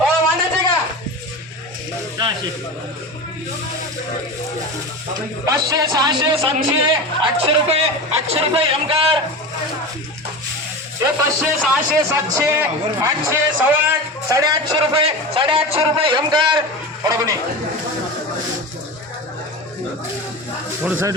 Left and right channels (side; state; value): both; normal; correlation 0.27